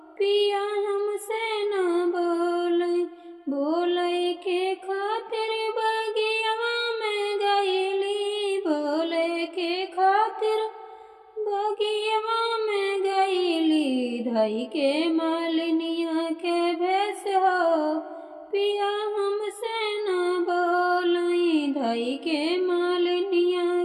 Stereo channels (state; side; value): identical; both; correlation 1.00